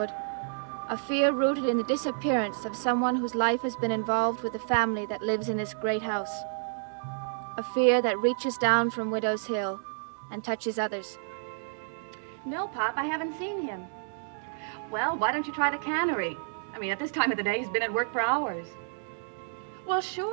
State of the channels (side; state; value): left; silent; digital silence